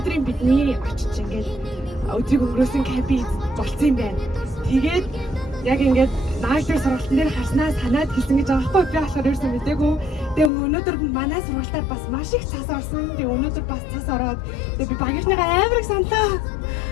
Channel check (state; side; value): drops out; right; at 10.5 s